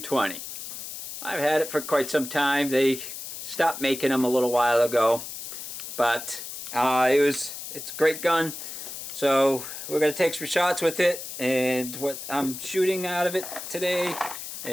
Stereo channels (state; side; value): noise; left; hiss, 9 dB below the sound